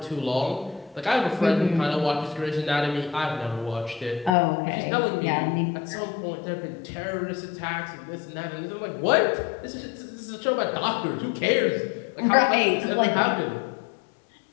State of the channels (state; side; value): drops out; right; at 4.4 s